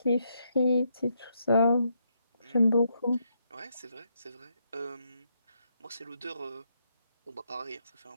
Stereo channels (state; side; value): inverted; both; correlation -0.77